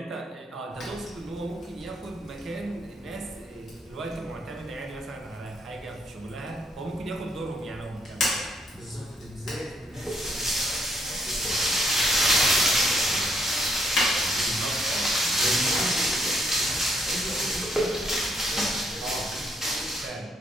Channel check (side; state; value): both; normal; correlation 0.72